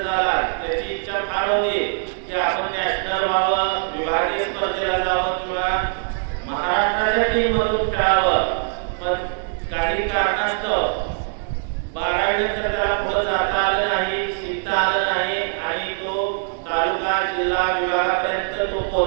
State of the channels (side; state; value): left; silent; digital silence